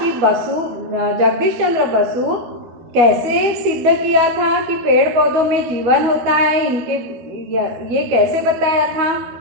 जगदीश चंद्र बसु कैसे सिद्ध किया था कि पेड़ पौधों में जीवन होता है, ये कैसे बताया था।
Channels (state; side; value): late; left; 12 ms